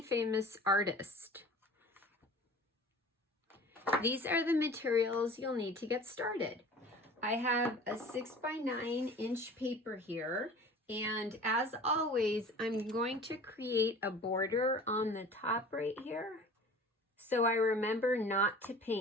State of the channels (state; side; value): normal; both; correlation 0.42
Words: famous artist. These are the materials you'll need to get started. I have a 6x9" paper here, and as always I'm going to create a border on the top right here. So I remember not to